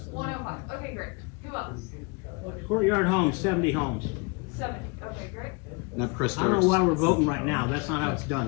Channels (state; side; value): quieter; right; 30.3 dB